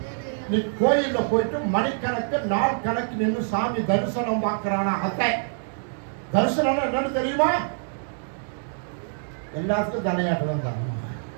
நீ கோயில்ல போயிட்டு மணிக்கணக்கு நாள் கணக்கு நின்று சாமி தரிசனம் பார்க்கிறானா? அத்தை தரிசனம் என்னன்னு தெரியுமா? எல்லாத்துக்கும் தலையாட்டுதான் தான்.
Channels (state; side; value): silent; left; 61 dB below the other